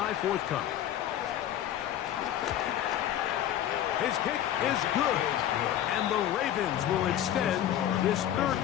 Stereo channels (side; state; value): right; quieter; 11.4 dB